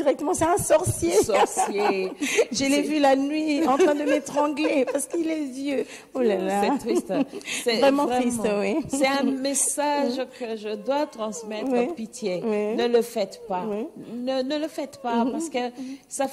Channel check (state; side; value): identical; both; correlation 1.00